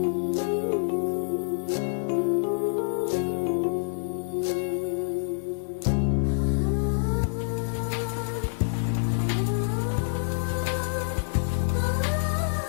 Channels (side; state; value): right; silent; digital silence